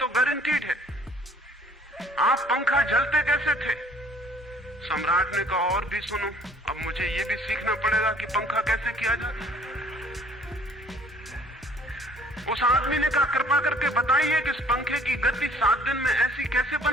गारंटीड है, आप पंखा जलते कैसे थे। सम्राट ने कहा और भी सुनो, अब मुझे ये भी सीखना पड़ेगा कि पंखा कैसे किया जाता। उस आदमी ने कहा कृपा करके बताइए कि इस पंखे की गति 7 दिन में ऐसी कैसे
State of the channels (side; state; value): both; normal; correlation 0.57